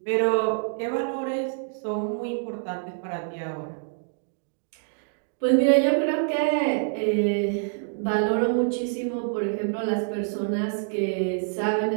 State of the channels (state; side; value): silent; left; digital silence